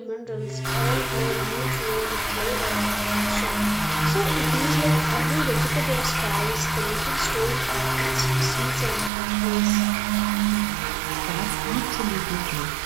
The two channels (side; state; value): left; drops out; at 9.1 s